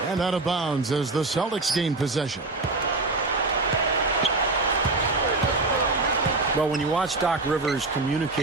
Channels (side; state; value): left; quieter; 3.3 dB